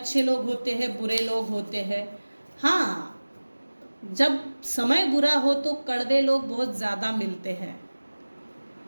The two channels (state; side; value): inverted; both; correlation -1.00